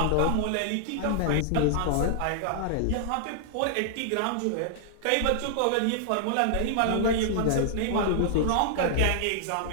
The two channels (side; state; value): both; different; correlation -0.01